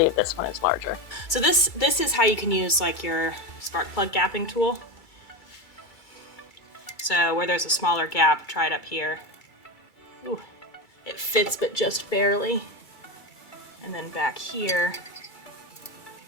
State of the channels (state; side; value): late; right; 2.3 ms